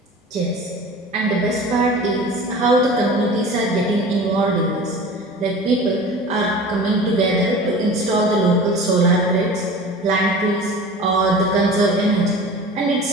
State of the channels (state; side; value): normal; both; correlation 0.38